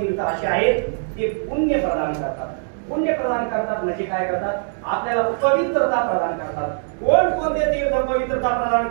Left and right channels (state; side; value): silent; left; digital silence